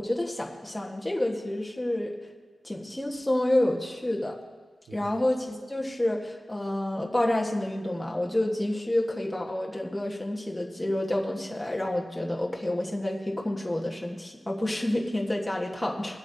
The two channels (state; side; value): normal; both; correlation 0.98